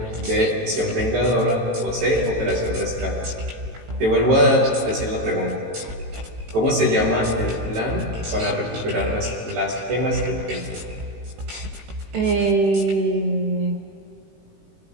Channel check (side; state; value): left; late; 18 ms